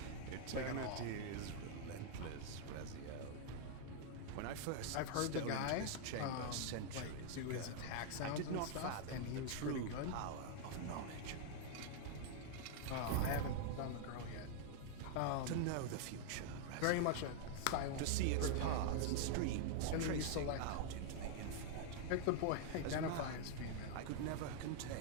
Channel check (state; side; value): different; both; correlation 0.00